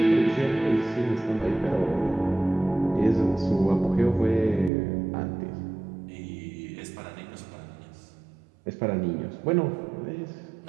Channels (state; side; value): drops out; left; at 4.7 s